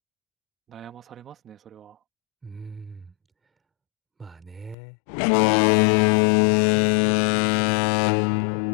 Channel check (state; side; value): drops out; right; at 4.8 s